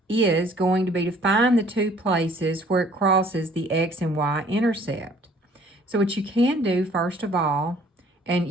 is going to be to find the two places where it crosses the x and y intercept. So what you can do, first of all, and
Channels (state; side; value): normal; both; correlation 0.57